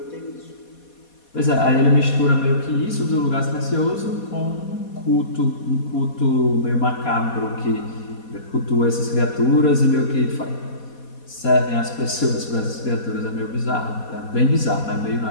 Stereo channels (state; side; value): late; right; 4.2 ms